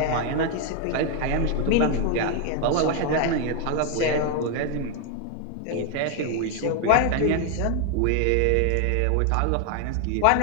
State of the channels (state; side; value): different; both; correlation 0.01